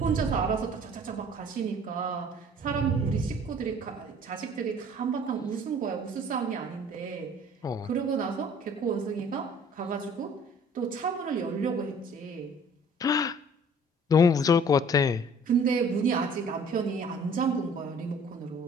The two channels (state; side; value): normal; both; correlation 0.52